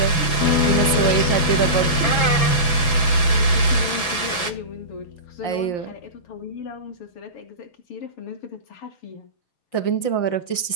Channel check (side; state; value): right; late; 6.0 ms